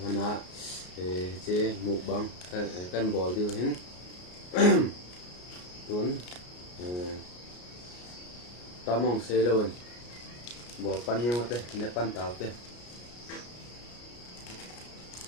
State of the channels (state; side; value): late; right; 33 ms